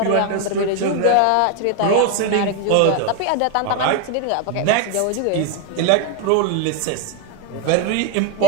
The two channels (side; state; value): both; different; correlation 0.03